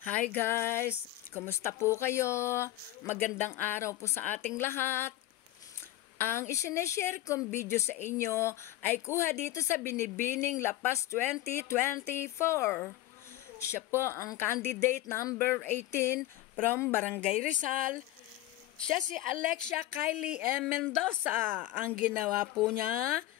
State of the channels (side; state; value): right; quieter; 15.4 dB